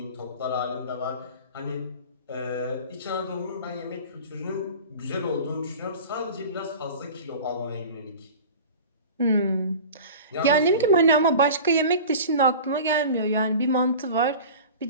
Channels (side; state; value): both; inverted; correlation -0.37